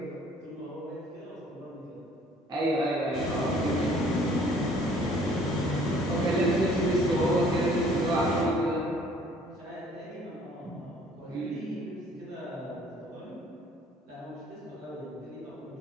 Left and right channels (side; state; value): both; normal; correlation 0.57